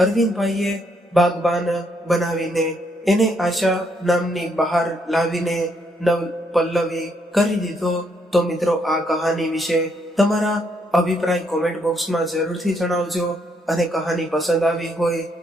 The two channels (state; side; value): normal; both; correlation 0.73